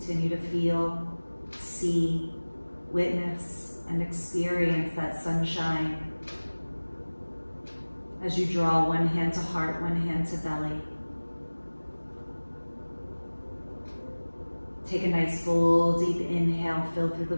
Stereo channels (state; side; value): inverted; both; correlation -1.00